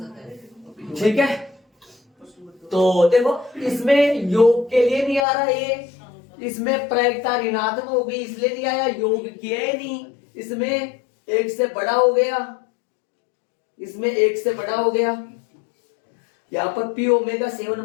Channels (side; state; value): right; drops out; at 5.2 s